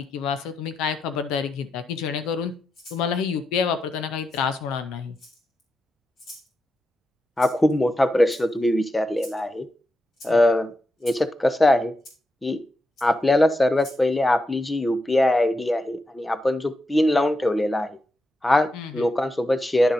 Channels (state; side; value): normal; both; correlation 0.87